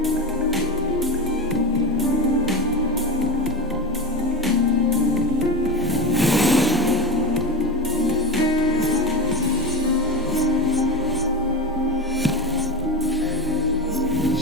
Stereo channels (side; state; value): left; noise; hum, 28 dB below the sound